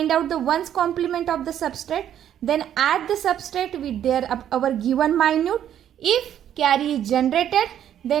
out the ones complement of the substrate. Then add the substrate with their our given minute. If carry is generated,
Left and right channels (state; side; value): quieter; left; 10.3 dB